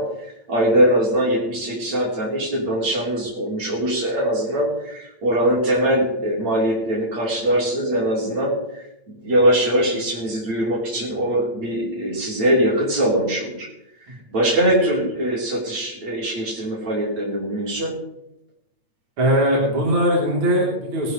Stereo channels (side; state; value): left; late; 8.8 ms